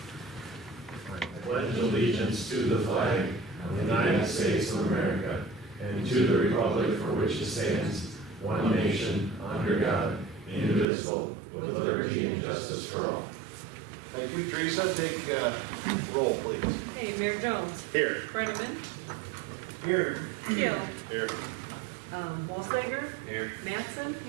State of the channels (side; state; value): left; drops out; at 10.9 s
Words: I pledge allegiance to the flag of the United States of America and to the republic for which it stands, one nation, under God, indivisible, with liberty and justice for all. Thank you, Teresa. Take roll, please. Hey, Mayor Jones. Here. Brenneman. Here. Keel. Here. Walsager. Here. Mattson.